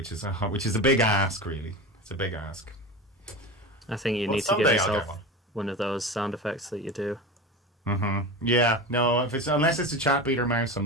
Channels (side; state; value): both; normal; correlation 0.27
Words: is a big ask, really. It's a big ask. I think you need to give yourself one of those sound effects that you do. Mm-hmm. Yeah. No. Unless it's a chat beater mouse, I'm